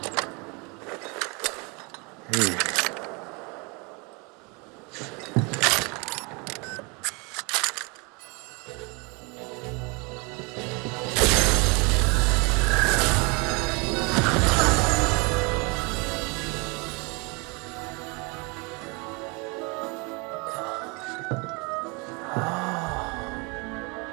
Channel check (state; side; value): quieter; left; 30.2 dB